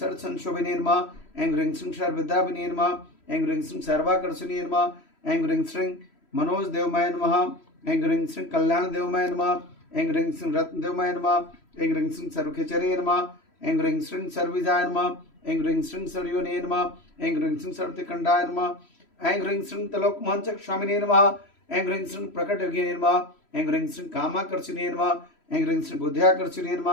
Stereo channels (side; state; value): right; late; 3.1 ms